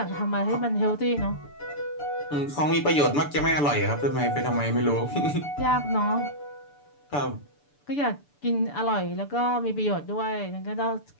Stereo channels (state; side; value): late; right; 6.9 ms